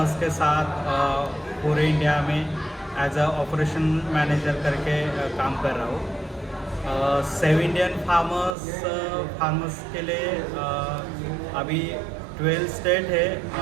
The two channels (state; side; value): drops out; left; at 8.6 s